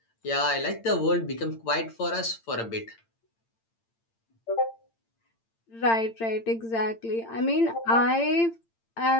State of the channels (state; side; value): late; right; 8.8 ms